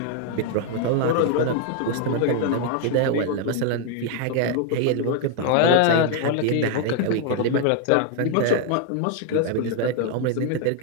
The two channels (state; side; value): different; both; correlation 0.01